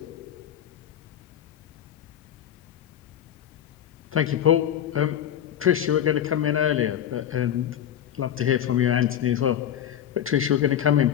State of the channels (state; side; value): quieter; right; 10.2 dB